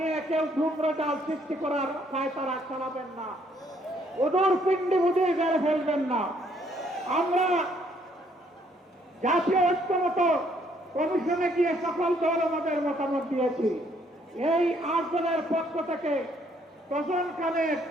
কেউ ধূম্রজাল সৃষ্টি করার পায়তারা চালাবেন না, ওদর পিণ্ডি বুঝে গেড়ে ফেলবেন না। আমরা জাতীয় ঐক্যমত কমিশনে গিয়ে সকল দল আমাদের মতামত দিয়েছি। এই 8 জনের পক্ষ থেকে প্রশাসনের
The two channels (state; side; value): normal; both; correlation 0.67